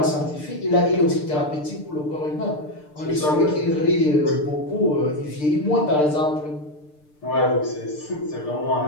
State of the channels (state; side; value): late; right; 6.7 ms